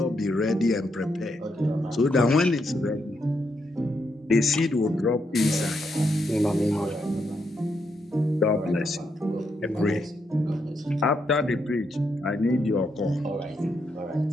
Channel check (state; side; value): normal; both; correlation 0.80